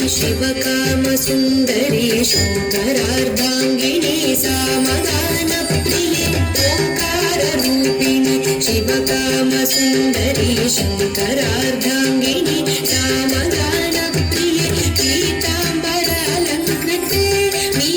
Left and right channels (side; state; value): both; identical; correlation 1.00